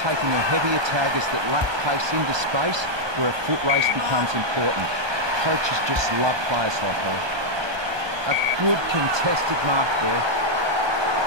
taking her heavier taggers that lack pace into space where a foot race becomes important. Coaches just love players like her. A good contested mark there.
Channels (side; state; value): left; late; 1.2 ms